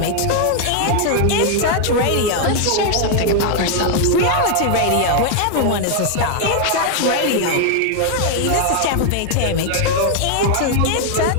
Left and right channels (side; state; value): both; different; correlation 0.00